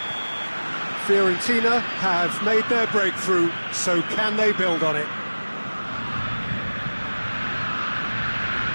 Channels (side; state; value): both; inverted; correlation -1.00